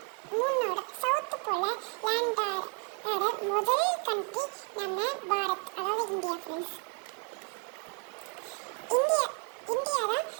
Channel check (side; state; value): left; quieter; 39.0 dB